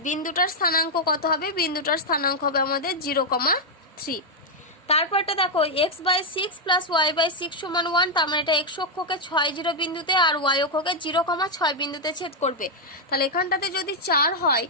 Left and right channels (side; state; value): both; normal; correlation -0.01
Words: বিন্দুটার স্থানাঙ্ক কত হবে, বিন্দুটার স্থানাঙ্ক হবে আমাদের 0,3। তারপরটা দেখো x by 6 plus y by 6 সমান 1। তার মানে এটা x অক্ষকে 6 0 বিন্দুতে আর y অক্ষকে 0,6 বিন্দুতে ছেদ করবে। তাহলে এখানটাতে যদি 4 হয়